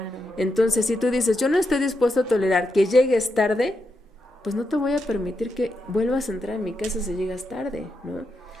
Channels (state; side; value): normal; both; correlation 0.84